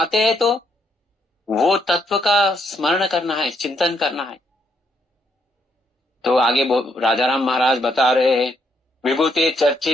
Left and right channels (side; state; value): both; normal; correlation 0.74